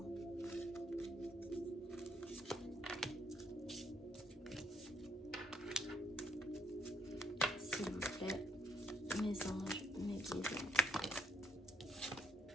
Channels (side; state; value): both; normal; correlation 0.69